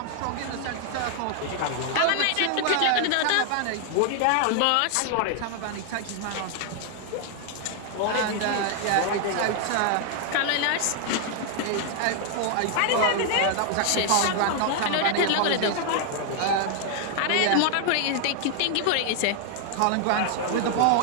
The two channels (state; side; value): different; both; correlation 0.00